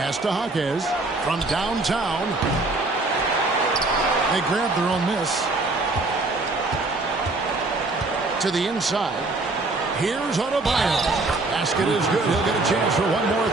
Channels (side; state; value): left; quieter; 3.2 dB